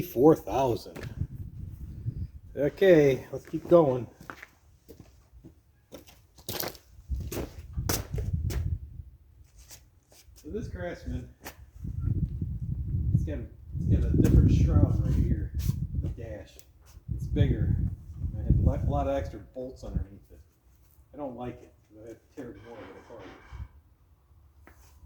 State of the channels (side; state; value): both; identical; correlation 1.00